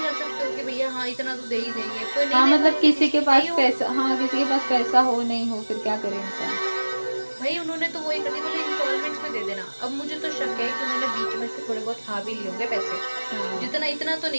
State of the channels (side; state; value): both; inverted; correlation -1.00